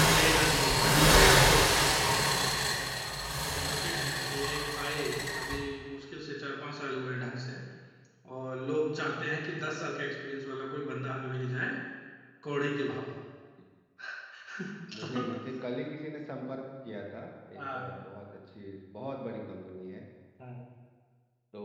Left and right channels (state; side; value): identical; both; correlation 1.00